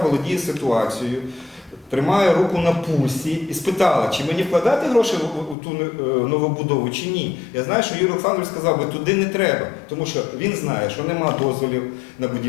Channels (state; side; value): drops out; right; at 5.6 s